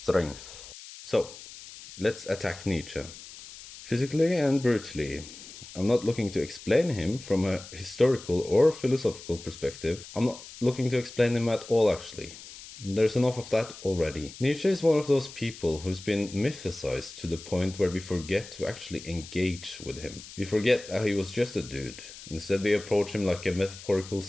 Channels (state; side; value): noise; left; hiss, 15 dB below the sound